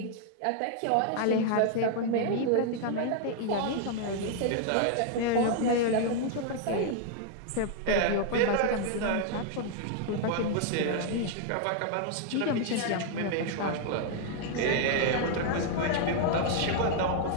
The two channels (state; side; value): different; both; correlation 0.00